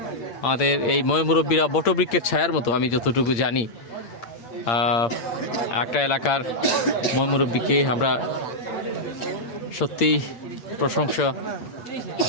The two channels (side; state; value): right; late; 8.7 ms